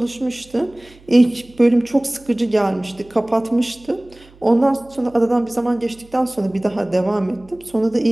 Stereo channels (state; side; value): noise; right; hum, 26 dB below the sound